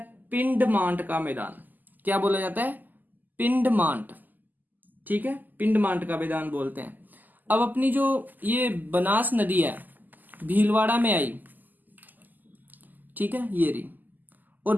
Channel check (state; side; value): late; left; 0.085 ms